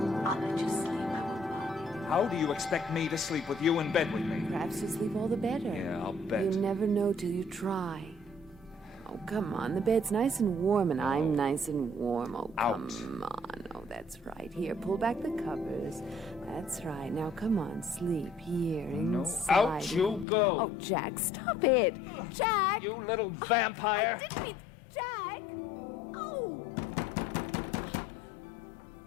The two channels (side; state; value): right; drops out; at 20.2 s